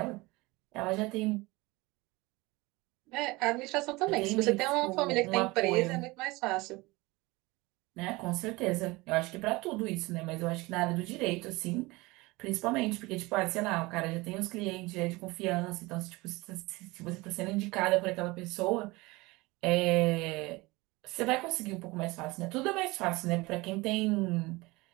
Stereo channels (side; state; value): left; quieter; 22.6 dB